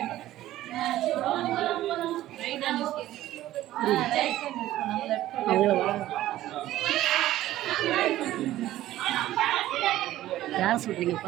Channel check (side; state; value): left; quieter; 14.5 dB